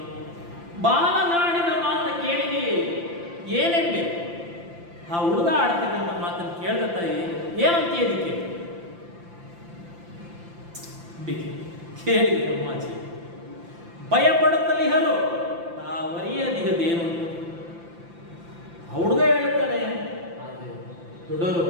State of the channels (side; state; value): left; late; 5.8 ms